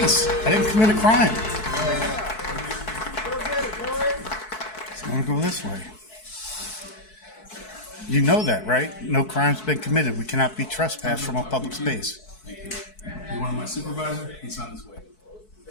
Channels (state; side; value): late; right; 4.6 ms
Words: I didn't commit a crime. So I'm gonna go this way. You know that, right? No crime's been committed. We cannot be trespassed from a public space. Thank you. You want my supervisor? He's on his way.